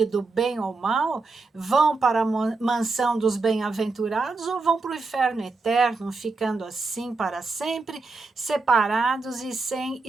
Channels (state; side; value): quieter; left; 3.8 dB